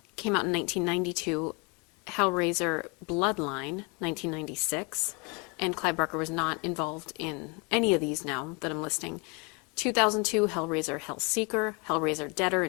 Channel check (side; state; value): right; quieter; 30.8 dB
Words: came out in 1992. Hellraiser Bloodline, 1996. And Clive Barker was not involved in any of these now that I'm listing. 2002, Hellraiser Hellseeker. Hellraiser Deader